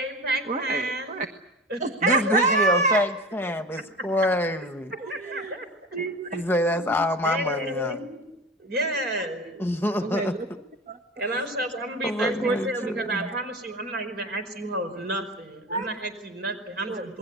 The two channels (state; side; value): normal; both; correlation 0.33